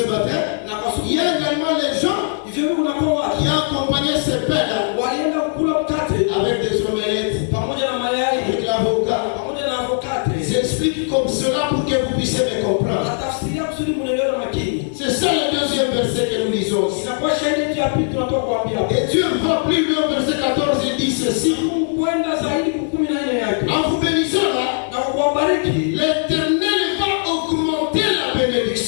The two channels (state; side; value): silent; right; 58 dB below the other